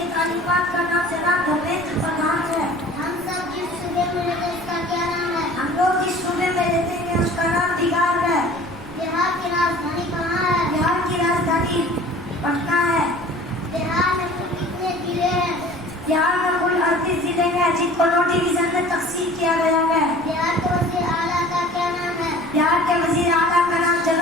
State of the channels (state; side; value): noise; right; rumble, 19 dB below the sound